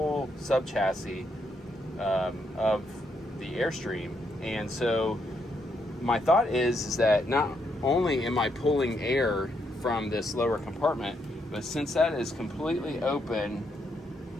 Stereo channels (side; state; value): both; normal; correlation 0.77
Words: sub chassis of the Airstream. And so my thought is that not only am I pulling air from this lower compartment, but since that is completely open